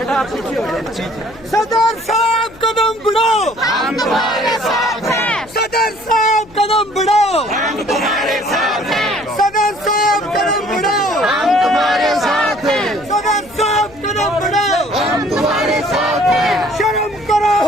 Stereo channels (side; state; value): left; noise; hum, 23 dB below the sound